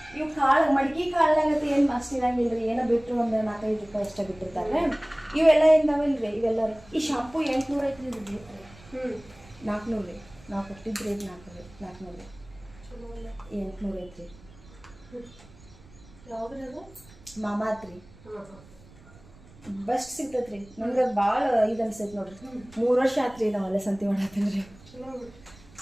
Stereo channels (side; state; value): right; noise; rumble, 23 dB below the sound